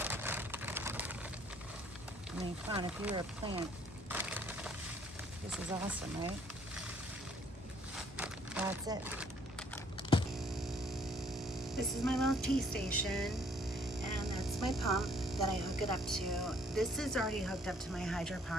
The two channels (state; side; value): normal; both; correlation 0.62